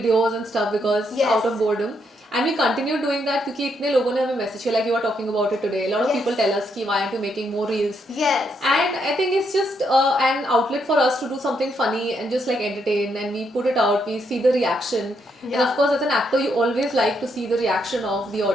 and stuff because out of boredom. And we continue doing that because इतने लोगों ने हमें message किया, like you are talking about it today. A lot of people tell us कि why aren't you making more reels? And I think it's just an outlet for us to do something funny and just like entertain, and we put it out, we see the reaction. And of course as an actor you always like to see the reaction of the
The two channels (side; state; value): both; normal; correlation 0.76